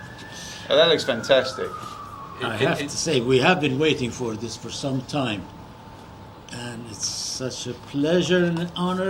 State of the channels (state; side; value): identical; both; correlation 1.00